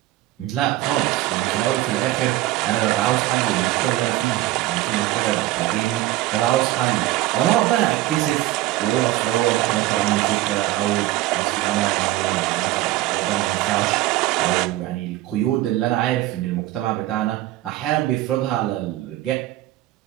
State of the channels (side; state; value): left; quieter; 16.1 dB